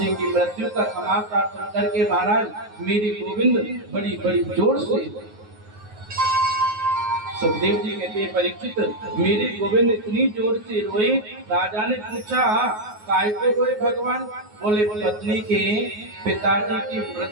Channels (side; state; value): left; late; 9.5 ms